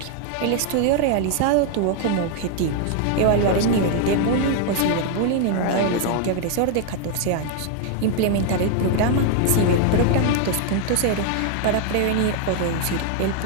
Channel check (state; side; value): different; both; correlation 0.00